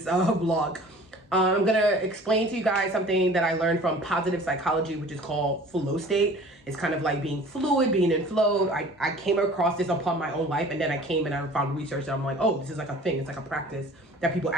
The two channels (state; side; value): normal; both; correlation 0.46